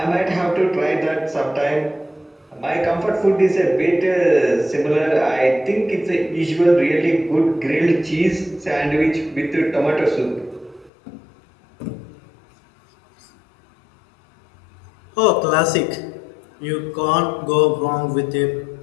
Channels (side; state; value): right; drops out; at 10.9 s